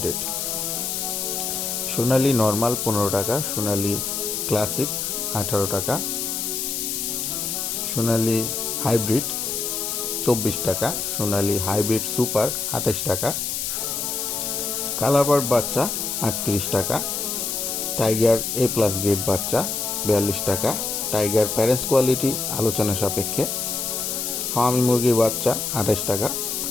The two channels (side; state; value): left; noise; hiss, 2 dB below the sound